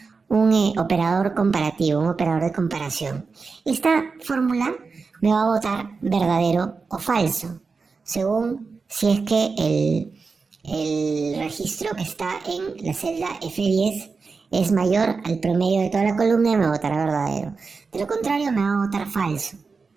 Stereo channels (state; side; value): quieter; left; 4.6 dB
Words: operador comparativo, un operador de comparación. Esta fórmula me va a botar verdadero o falso, según si es que el registro que está en la celda F10 es mayor al promedio de toda la columna y me botará verdadero. De lo contrario, me va a botar falso.